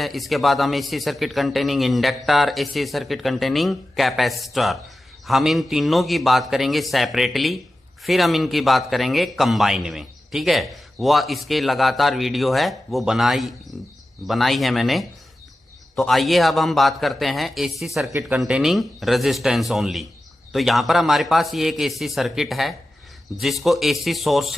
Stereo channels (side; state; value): both; normal; correlation 0.93